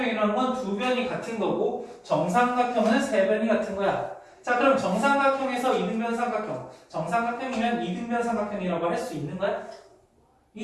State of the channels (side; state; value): both; identical; correlation 1.00